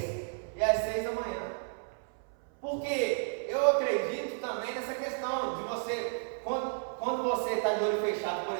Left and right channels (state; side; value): silent; left; 56 dB below the other